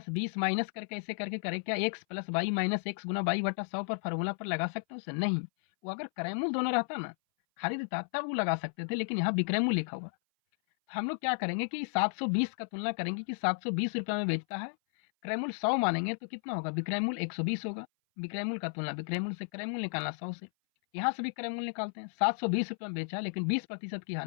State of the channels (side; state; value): right; silent; 56 dB below the other